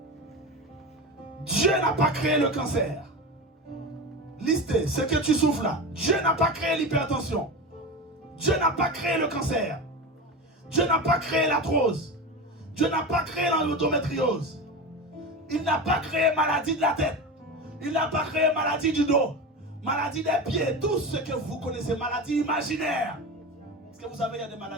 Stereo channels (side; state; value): both; normal; correlation 0.24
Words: Dieu n'a pas créé le cancer. Listez ce que tu souffres là. Dieu n'a pas créé l'hypertension. Dieu n'a pas créé le cancer. Dieu n'a pas créé l'arthrose. Dieu n'a pas créé l'endométriose. Il n'a pas créé maladie de la tête. Il n'a pas créé maladie du dos. Maladie des pieds. Tout ce que vous connaissez, maladie imaginaire. Est-ce que vous savez, il y a des